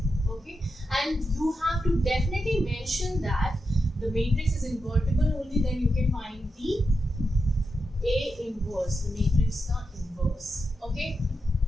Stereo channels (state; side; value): normal; both; correlation 0.87